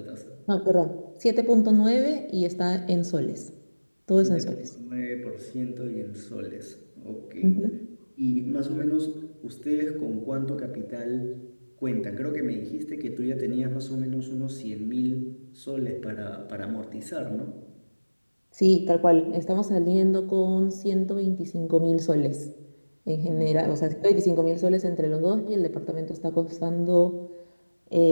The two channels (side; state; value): both; inverted; correlation -1.00